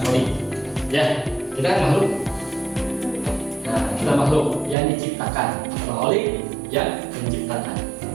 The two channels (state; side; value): drops out; left; at 4.8 s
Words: Khalik. Ya, kita kan makhluk. Nah, kita makhluk yang diciptakan, Khalik yang menciptakan.